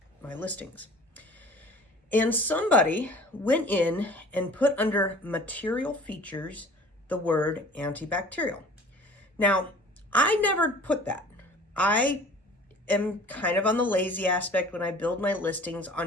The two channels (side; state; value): both; normal; correlation 0.47